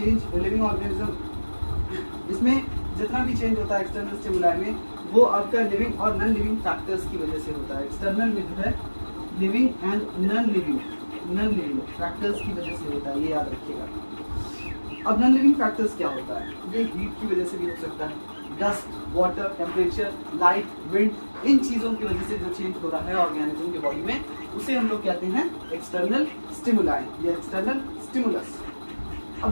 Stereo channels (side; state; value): both; inverted; correlation -1.00